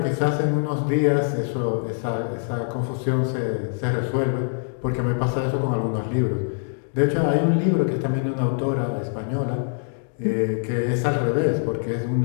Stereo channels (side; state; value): right; silent; digital silence